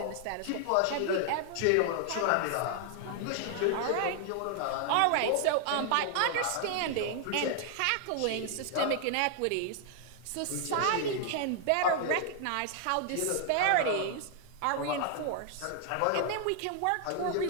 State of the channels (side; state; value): both; different; correlation 0.00